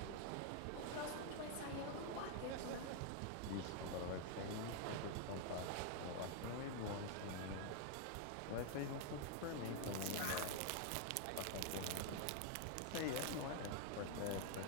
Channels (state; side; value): different; both; correlation 0.00